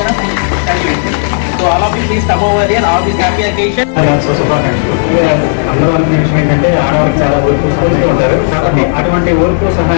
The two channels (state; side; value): silent; right; digital silence